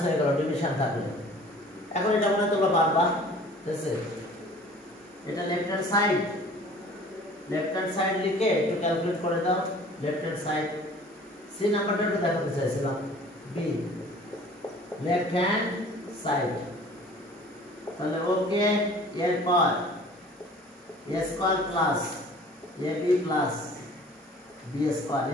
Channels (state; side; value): normal; both; correlation 0.48